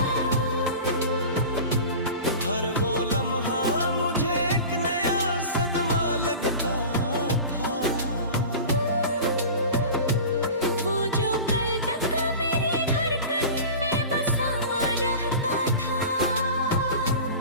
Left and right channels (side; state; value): both; inverted; correlation -0.35